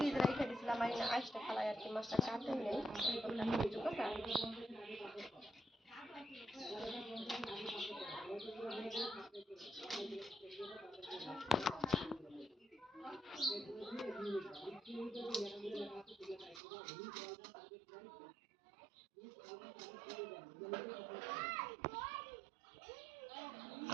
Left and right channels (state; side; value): drops out; left; at 16.6 s